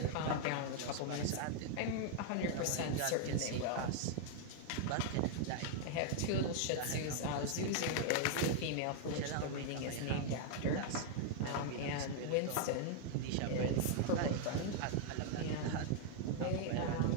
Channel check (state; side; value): different; both; correlation 0.00